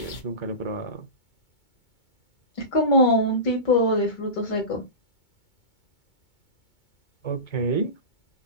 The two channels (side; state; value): right; late; 2.2 ms